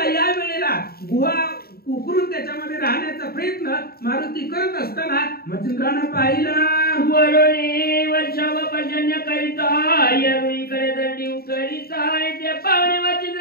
या वेळेला गुहा उकरून त्याच्यामध्ये राहण्याचा प्रयत्न मारुती करत असताना मच्छिंद्रानं पाहिलं. वरुणी वर्षाव पर्जन्य करिता येरुईकडे दंडी करिता, ते पावणे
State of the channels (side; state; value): right; late; 0.45 ms